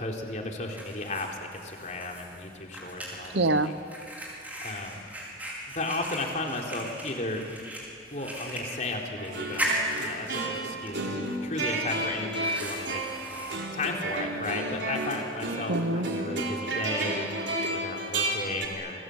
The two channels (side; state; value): both; normal; correlation 0.11